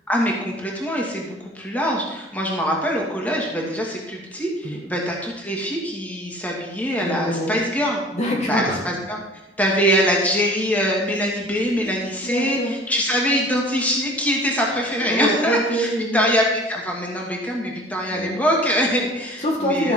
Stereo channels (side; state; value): both; normal; correlation 0.46